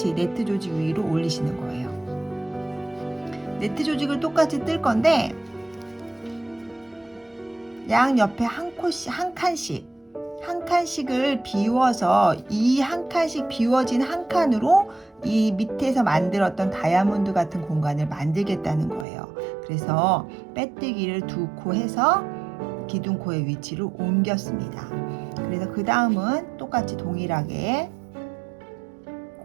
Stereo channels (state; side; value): drops out; left; at 19.1 s